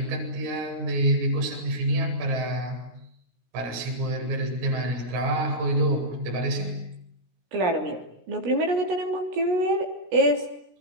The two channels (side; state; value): left; late; 17 ms